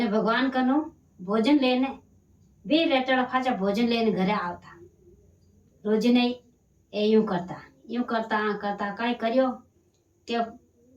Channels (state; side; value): identical; both; correlation 1.00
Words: भगवान कनु भोजन लेने भी रेटड़ा फाचा भोजन लेने घरे आवता। रोज नहीं ए यूं करता करता काय करियो के